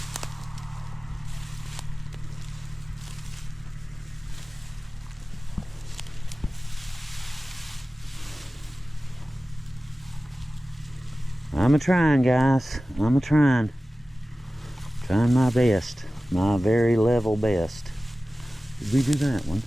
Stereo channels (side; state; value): both; normal; correlation 0.96